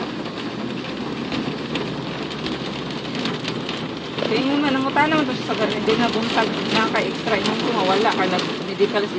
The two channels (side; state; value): both; identical; correlation 1.00